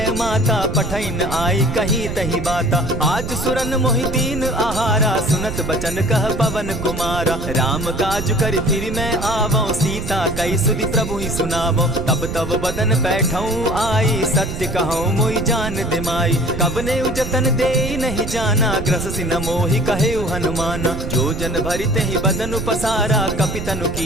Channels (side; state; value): right; noise; rumble, 6 dB below the sound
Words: माता पठैन आई कही तही बाता आज सुरन मोहि दीन आहारा सुनत बचन कह पवन कुमारा राम काज कर फिर मैं आवो सीता कई सुधि प्रभु ही सुनावो तब तब बदन बैठऊं आई सत्य कहूं मोहि जान दिमाई कबने उजतन दे नहीं जाना ग्रस सिन मोहि कहे हनुमाना जो जन भरित ही बदन पसारा कपितनु